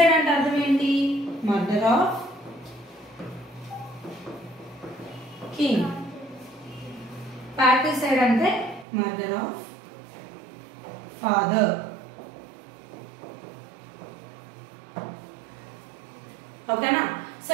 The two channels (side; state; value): left; drops out; at 8.8 s